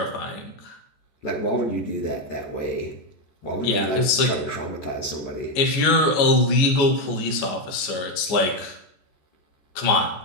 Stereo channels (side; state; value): right; late; 14 ms